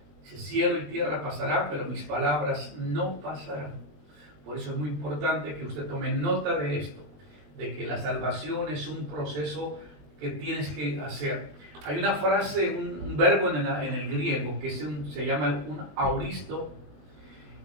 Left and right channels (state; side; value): late; left; 20 ms